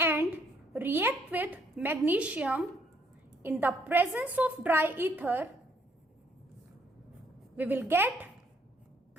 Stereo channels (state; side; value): normal; both; correlation 0.68